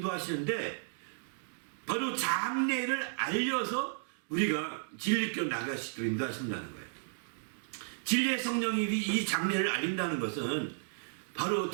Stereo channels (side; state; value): left; silent; digital silence